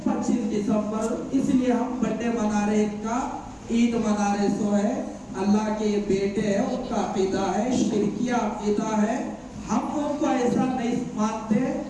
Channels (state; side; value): identical; both; correlation 1.00